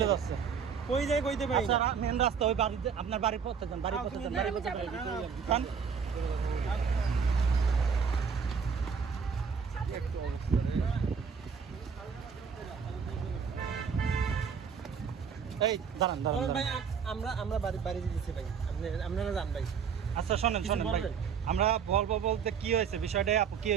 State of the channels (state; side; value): quieter; left; 6.4 dB